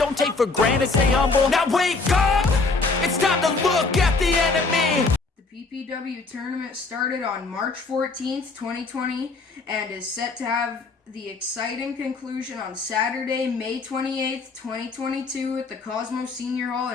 take for granted, stay humble. Now wake up! It's time to look at the enemy. The PPW Tournament started on March 14th, 2020, and is set to have the exciting conclusion on Saturday, May 28th, 2022 at the Cosmos Senior Hall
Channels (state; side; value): quieter; right; 3.9 dB